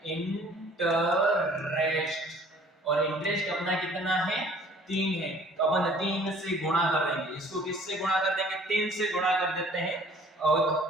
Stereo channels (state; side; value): normal; both; correlation 0.53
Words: इंटरेस्ट। और इंटरेस्ट अपना कितना है, 3 है, तो अपन 3 से गुणा कर देंगे। इसको किससे गुणा कर देंगे, 3 से गुणा कर देते हैं।